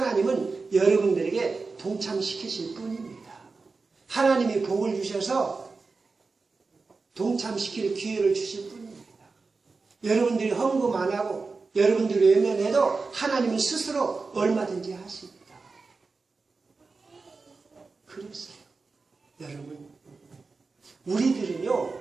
여러분들에게 동참시키실 뿐입니다. 하나님이 복을 주셔서 동참시킬 기회를 주실 뿐입니다. 여러분들이 헌금 안 하고 여러분들이 외면해도 하나님은 스스로 얼마든지 하십니다. 그랬어요. 여러분, 우리들은요,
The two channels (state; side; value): quieter; left; 4.2 dB